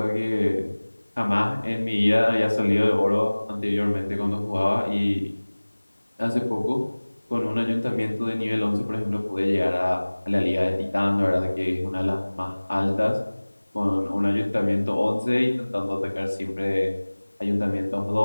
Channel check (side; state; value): both; inverted; correlation -1.00